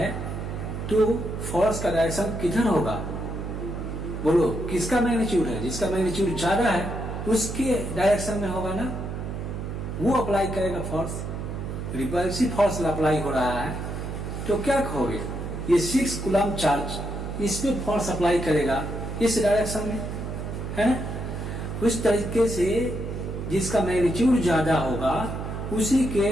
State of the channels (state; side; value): noise; right; hum, 6 dB below the sound